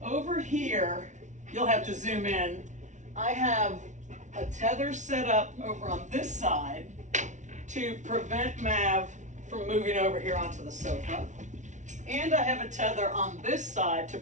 over here, you'll have to zoom in. I have a tether set up over on this side to prevent Mav from moving over here onto the sofa. And I have a tether on this side to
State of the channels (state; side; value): late; left; 0.36 ms